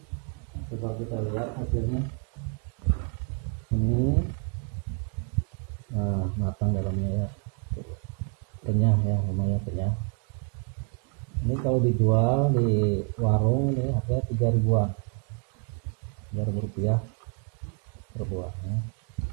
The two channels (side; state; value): left; quieter; 38.6 dB